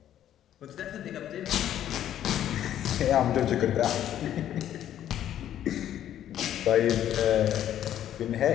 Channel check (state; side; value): quieter; right; 11.2 dB